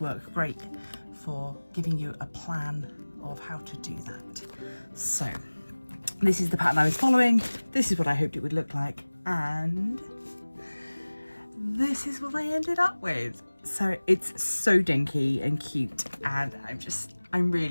great for giving you a plan of how to do that. So, this is the pattern I was following. This is what I hoped it would look like, and this is what I ended up with. So it's so dinky and cute, and I'm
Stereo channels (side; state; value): both; inverted; correlation -1.00